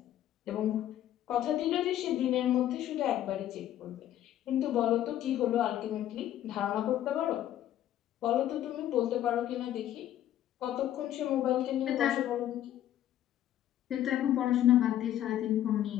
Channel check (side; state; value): right; quieter; 12.1 dB